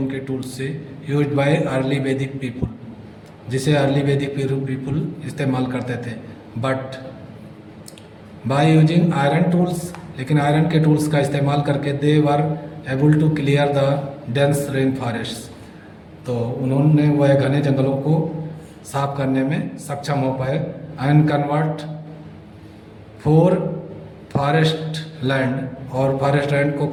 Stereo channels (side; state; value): both; identical; correlation 1.00